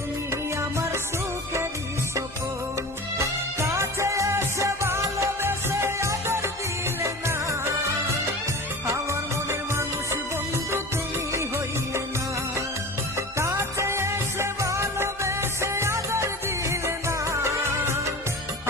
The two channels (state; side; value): normal; both; correlation 0.34